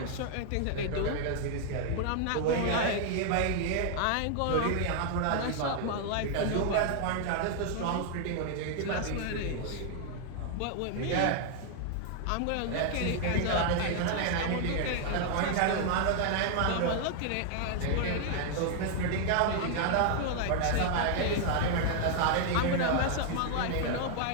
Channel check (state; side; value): different; both; correlation 0.00